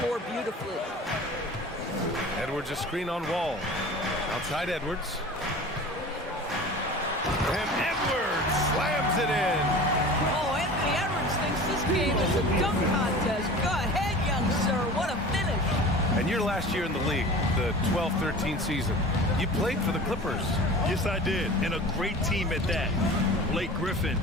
beautifully. Edwards a screen on Wall. Outside Edwards. And Edwards slams it in. Oh, Anthony Edwards thinks this game is a dunk contest. Go ahead, young sir. What a finish. And your last year in the league, the 12-13 season, you played for the Clippers. Yes, I did, and a great team at that. Blake Griffin,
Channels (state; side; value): normal; both; correlation 0.38